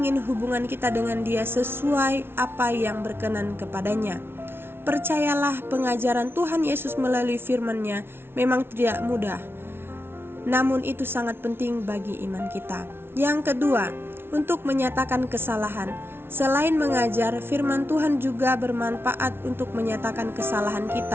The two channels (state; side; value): late; left; 0.11 ms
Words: hubungan kita dengan Dia sesuai apa yang berkenan kepadanya. Percayalah, pengajaran Tuhan Yesus melalui firman-Nya memang tidak mudah, namun itu sangat penting bagi iman kita. Yang kedua, untuk menyatakan kesalahan. Selain mengajar, firman Tuhan juga bermanfaat untuk menyatakan kesalahan